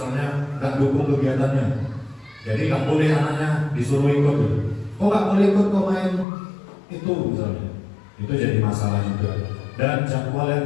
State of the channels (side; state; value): right; drops out; at 6.2 s